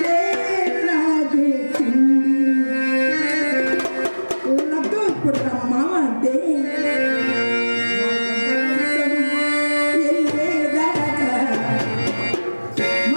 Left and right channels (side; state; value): both; inverted; correlation -1.00